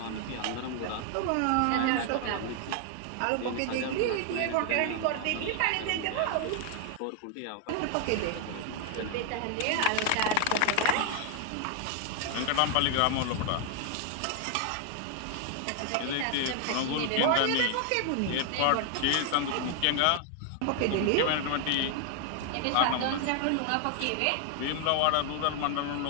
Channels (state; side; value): different; both; correlation 0.00